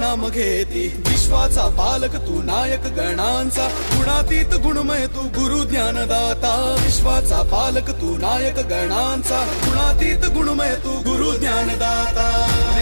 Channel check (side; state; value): both; inverted; correlation -1.00